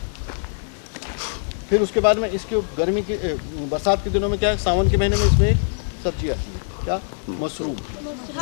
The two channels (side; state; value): right; silent; 64 dB below the other